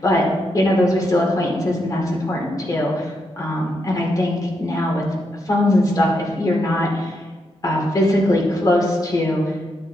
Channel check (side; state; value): both; normal; correlation 0.81